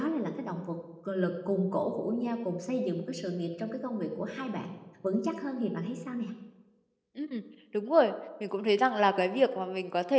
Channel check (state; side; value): identical; both; correlation 1.00